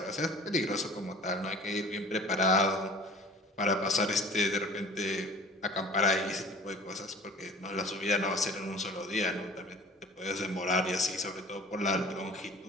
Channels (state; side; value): normal; both; correlation 0.45